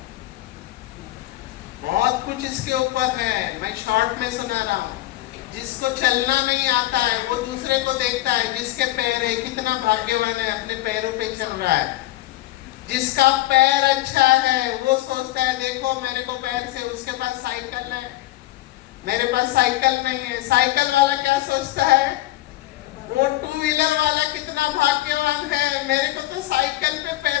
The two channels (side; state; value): right; quieter; 16.4 dB